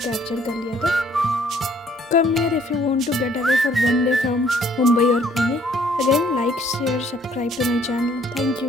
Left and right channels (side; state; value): both; normal; correlation 0.62